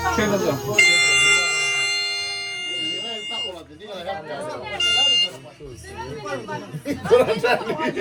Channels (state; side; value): identical; both; correlation 1.00